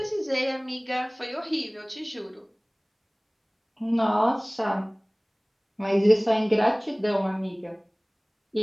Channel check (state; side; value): identical; both; correlation 1.00